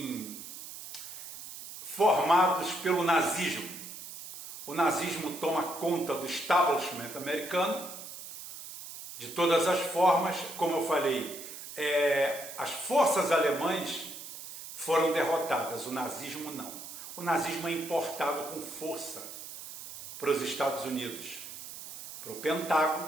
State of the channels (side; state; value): right; noise; hiss, 12 dB below the sound